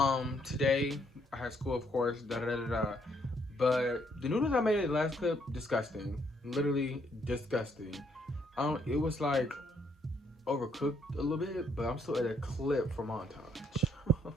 Today I had school, of course, da da da da. Da. But the noodles I made in the last clip, disgusting. Literally disgusting. It was like overcooked a little bit, but I'm still at a clip for montage.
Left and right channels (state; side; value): normal; both; correlation 0.71